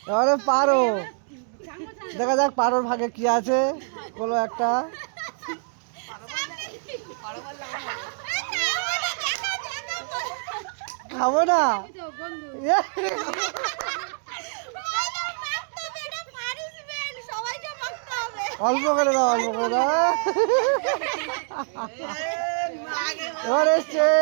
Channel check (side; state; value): left; silent; 61 dB below the other